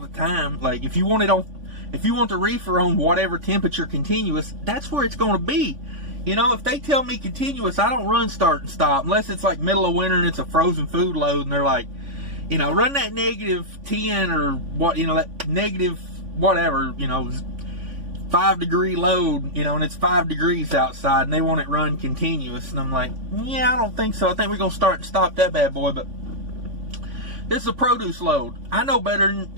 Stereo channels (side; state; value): left; late; 3.5 ms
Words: the time. Like, if you want the reefer on whatever temperature continuous, that's where it's going to be. If they tell me continuous, I don't run start and stop unless it's like middle of winter and it's a frozen food load and they're like, run that -10 or what, that negative whatever, 5-degree load, and it's 5 degrees outside and they want it run continuous. And I'm like, yeah, I don't think so. I think we're going to start and stop that bad boy. But this is a produce load. I know better than,